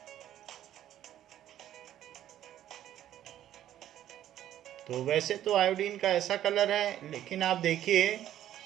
तो वैसे तो आयोडीन का ऐसा कलर है, लेकिन आप देखिए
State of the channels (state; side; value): quieter; left; 11.9 dB